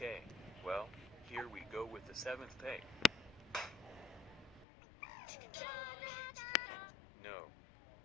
well, here we go with the 7th take. No.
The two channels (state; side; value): drops out; right; at 4.7 s